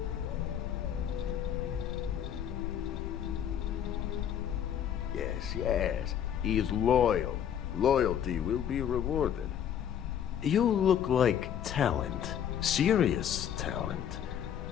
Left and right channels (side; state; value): right; quieter; 9.3 dB